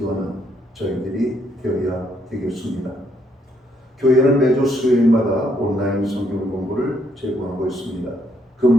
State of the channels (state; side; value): normal; both; correlation 0.72